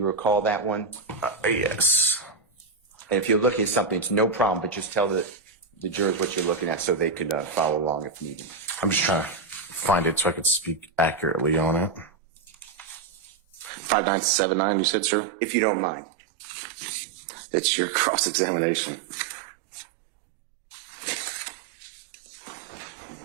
recall that one? Yes. And if you're looking at something, it's no problem, but just tell the jurors what you're looking at so they could follow along if needed. I'm just trying to find it so I could speak accurately on it. 5979, you said, sir? If you don't mind. It's your cross-examination.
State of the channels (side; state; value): left; drops out; at 13.7 s